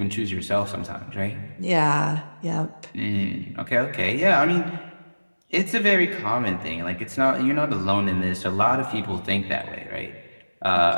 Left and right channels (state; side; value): inverted; both; correlation -1.00